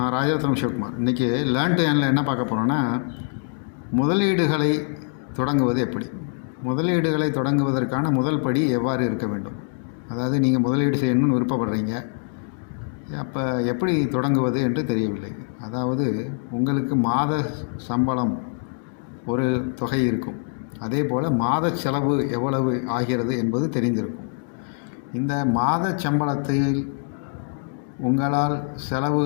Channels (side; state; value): right; silent; 63 dB below the other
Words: ராஜரத்னம் சிவகுமார். இன்றைக்கி learn to ஏர்னில் என்ன பார்க்க போகிறோன்னா, முதலீடுகளை தொடங்குவது எப்படி, முதலீடுகளை தொடங்குவதற்கான முதல் படி எவ்வாறு இருக்க வேண்டும். அதாவது நீங்கள் முதலீடு செய்யணும்னு விருப்பப்படுறீங்க, அப்போ எப்படி தொடங்குவது என்று தெரியவில்லை. அதாவது உங்களுக்கு மாத சம்பளம் ஒரு தொகை இருக்கும், அதே போல் மாத செலவு எவ்வளவு ஆகிறது என்பது தெரிந்திருக்கும். இந்த மாத சம்பளத்தில் உங்களால்